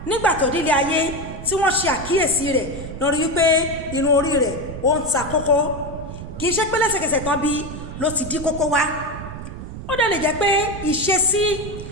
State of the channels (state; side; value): noise; right; rumble, 10 dB below the sound